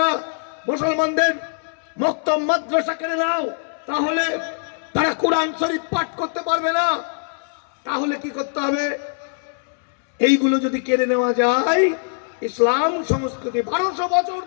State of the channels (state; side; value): silent; right; 64 dB below the other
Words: মুসলমানদের মক্তব মাদ্রাসা কেড়ে নাও, তাহলে তারা কোরআন শরীফ পাঠ করতে পারবে না। তাহলে কি করতে হবে? এইগুলো যদি কেড়ে নেওয়া যায়, ইসলাম সংস্কৃতি 1200 বছর